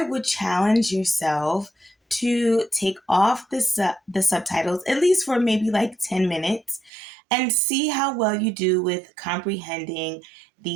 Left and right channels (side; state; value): left; drops out; at 6.9 s